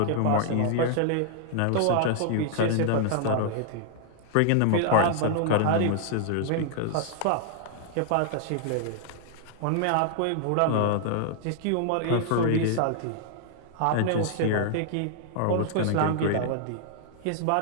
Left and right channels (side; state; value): both; different; correlation 0.00